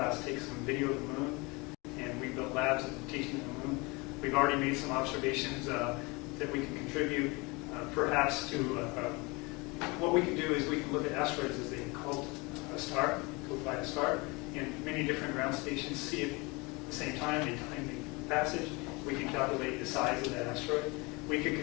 take some video of the moon, and we built labs teaching the moon. We've already made some observations that we can contribute, perhaps to what we can do is we can look at asteroids as they called a star, go by a star, in many different ground stations, see it at the same time, they time the passage. We can calculate the size of that asteroid. We could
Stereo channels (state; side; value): quieter; right; 26.4 dB